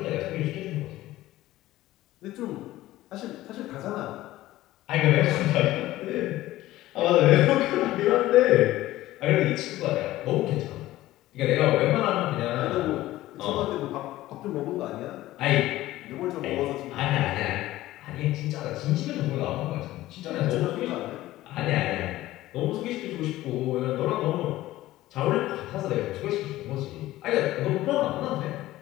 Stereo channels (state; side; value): quieter; right; 16.0 dB